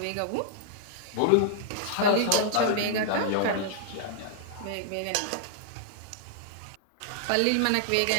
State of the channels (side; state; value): both; different; correlation -0.01